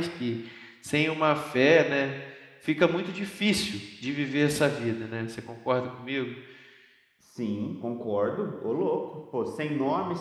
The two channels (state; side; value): identical; both; correlation 1.00